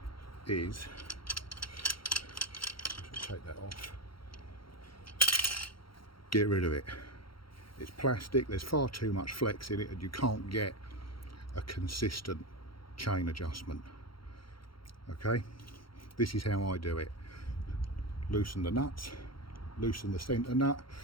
is, take that off, get rid of it. It's plastic, there's far too much flex in it, and you can't get a consistent chain adjustment. Okay, this is how I do it. Loosen the nuts, loosen the centre nut.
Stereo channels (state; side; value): late; right; 0.73 ms